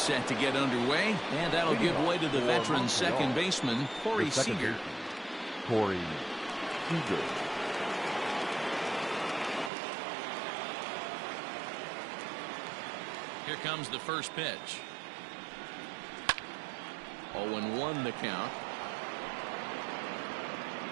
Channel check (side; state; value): left; drops out; at 9.7 s